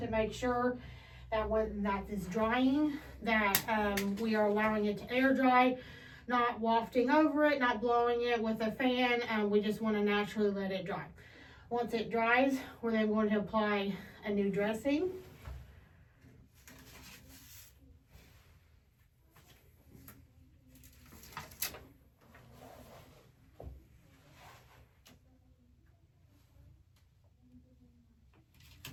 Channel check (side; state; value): both; identical; correlation 1.00